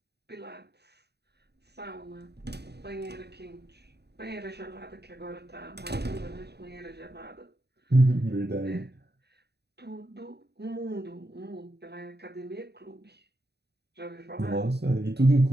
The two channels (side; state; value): left; late; 0.48 ms